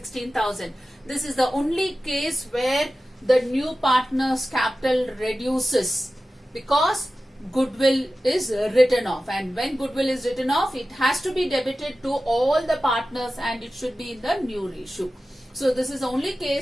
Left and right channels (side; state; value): both; normal; correlation 0.94